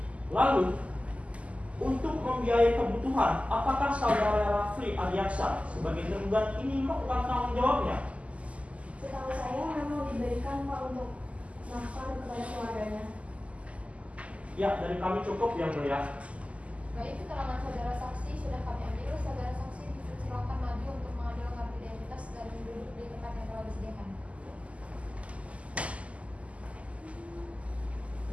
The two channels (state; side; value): late; left; 0.064 ms